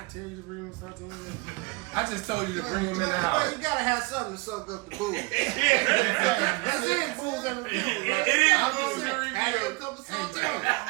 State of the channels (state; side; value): quieter; left; 27.0 dB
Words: tell you to bring me saltines. I just told you to bring them in the house. You gotta have something to suck up the booze. That's it, fools and reviews. It is fools and reviews. Have a cup of saltines.